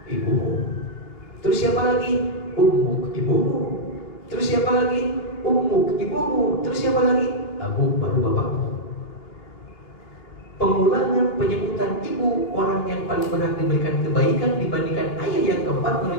ibumu. Terus siapa lagi? Ummuk, ibumu. Terus siapa lagi? Ummuk, ibumu. Terus siapa lagi? Abu, baru bapakmu. Pengulangan penyebutan ibu, orang yang paling berhak diberikan kebaikan dibandingkan ayah yang keempat,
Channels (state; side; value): late; right; 2.8 ms